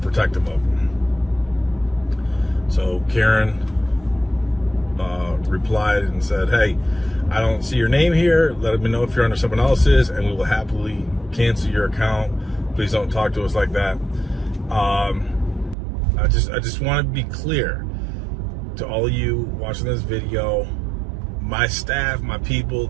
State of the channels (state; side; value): drops out; left; at 15.8 s